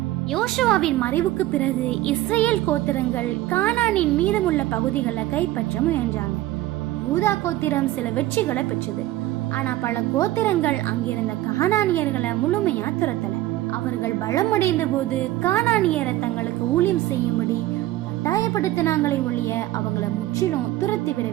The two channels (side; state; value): left; quieter; 15.6 dB